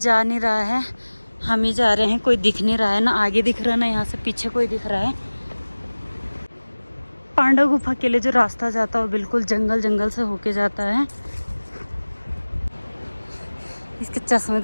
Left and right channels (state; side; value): inverted; both; correlation -1.00